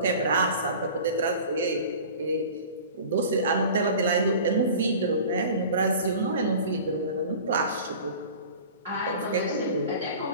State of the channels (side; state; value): both; inverted; correlation -0.40